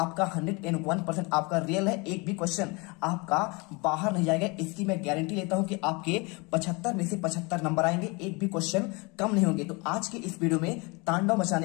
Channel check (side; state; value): right; quieter; 28.1 dB